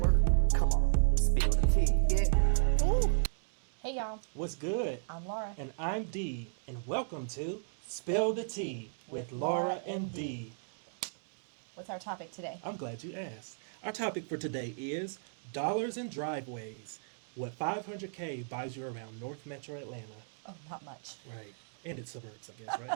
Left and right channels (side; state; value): left; silent; digital silence